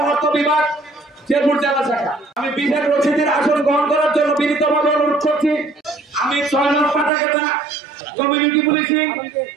অর্থ বিভাগ, শেরপুর জেলা শাখা। আমি বিশেষ অতিথির আসন গ্রহণ করার জন্য বিনীতভাবে অনুরোধ করছি। আমি ৬ নং পাটাকেটা কমিউনিটি পুলিশিং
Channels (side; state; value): left; drops out; at 7.1 s